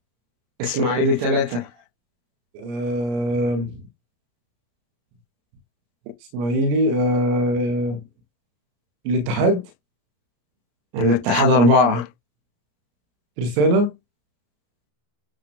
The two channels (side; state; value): left; late; 33 ms